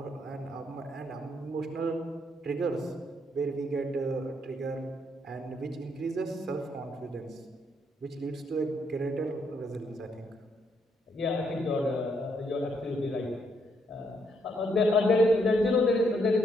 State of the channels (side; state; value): both; normal; correlation 0.74